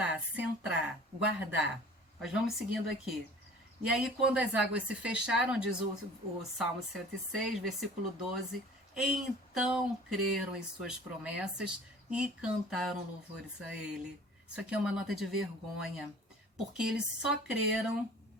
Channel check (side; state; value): both; normal; correlation 0.46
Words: centrar, guardar. Nós vamos seguindo aqui. E aí, quando as águas se fecharam, diz o Salmo 106, versículo 12, então creram em suas promessas e cantaram louvores a ele. Isso aqui é uma nota de vergonha, porque eles só creram